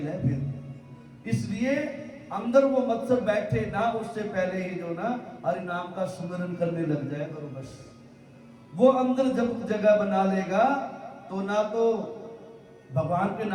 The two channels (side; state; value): both; identical; correlation 1.00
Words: है फिर। इसलिए अंदर वो मत्सर बैठे ना, उससे पहले ही जो ना हरि नाम का सुमिरन करने लग जाए करो बस। वो अंदर जब जगह बना लेगा तो ना तो भगवान के